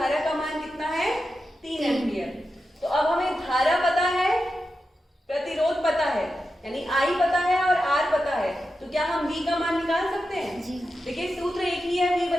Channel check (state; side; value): normal; both; correlation 0.90